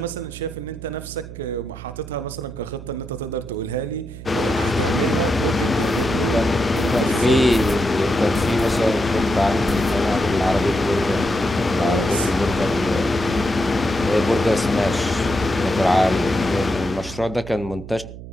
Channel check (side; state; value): right; noise; hum, 13 dB below the sound